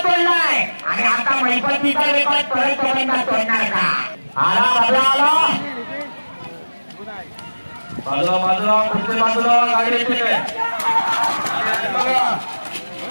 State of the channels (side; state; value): both; inverted; correlation -1.00